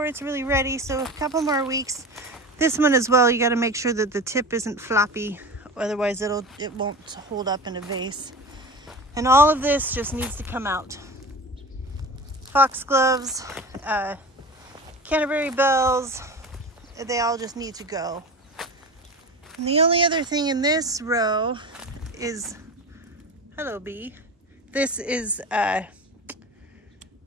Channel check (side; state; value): both; normal; correlation 0.32